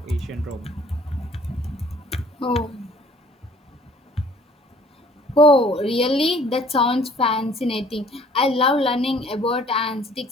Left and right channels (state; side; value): normal; both; correlation 0.56